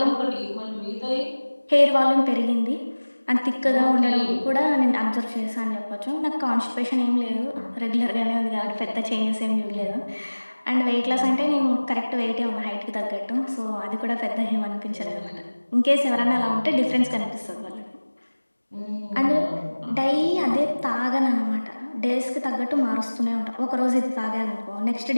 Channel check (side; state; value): both; inverted; correlation -1.00